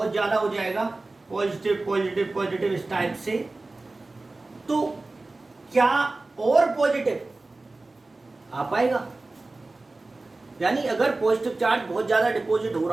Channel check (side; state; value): left; quieter; 3.2 dB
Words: ज्यादा हो जाएगा, पॉजिटिव इस टाइप से, तो क्या और पॉजिटिव आ पाएगा? यानी अगर पॉजिटिव चार्ज बहुत ज्यादा डिपॉजिट हो